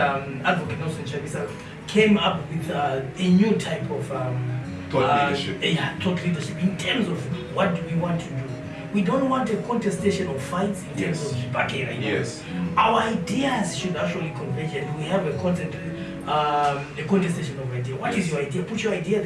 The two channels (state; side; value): identical; both; correlation 1.00